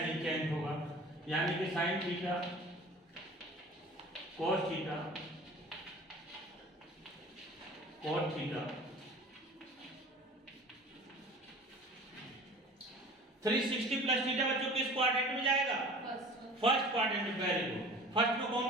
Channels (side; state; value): both; normal; correlation 0.43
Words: चेंज होगा। यानी कि sine theta cos theta cot theta 360 plus theta बच्चों किस क्वाड्रेंट में जाएगा? फर्स्ट क्वाड्रेंट में। Very good. फर्स्ट में कौन